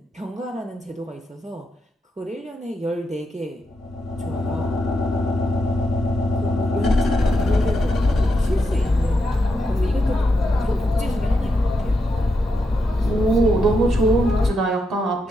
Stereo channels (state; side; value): normal; both; correlation 0.83